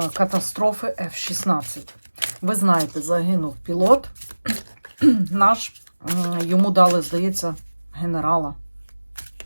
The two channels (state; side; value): inverted; both; correlation -1.00